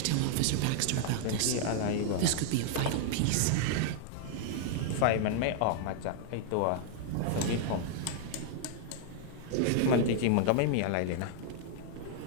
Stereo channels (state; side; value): different; both; correlation 0.00